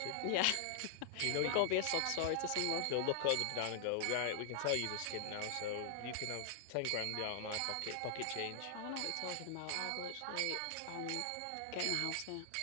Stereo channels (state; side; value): different; both; correlation 0.00